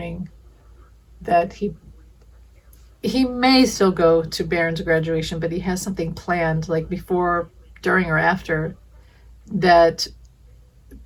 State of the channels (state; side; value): identical; both; correlation 1.00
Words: that he may still go to Barron's graduation, but he has something planned, like before, during, or after that,